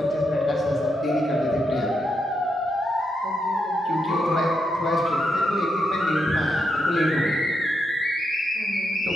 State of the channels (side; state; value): both; normal; correlation 0.82